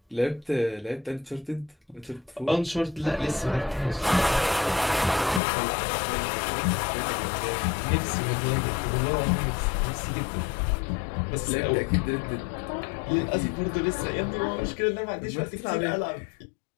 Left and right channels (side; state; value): right; drops out; at 5.4 s